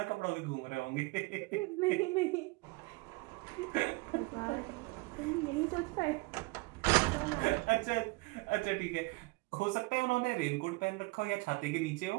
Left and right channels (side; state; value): left; quieter; 25.5 dB